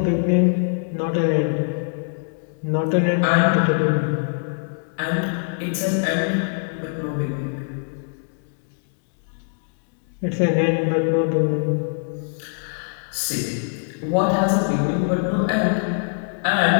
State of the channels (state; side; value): silent; right; 64 dB below the other